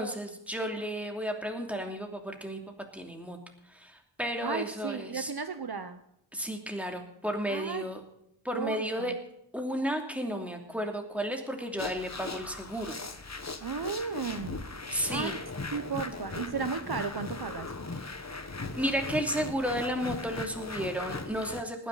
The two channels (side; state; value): both; normal; correlation 0.35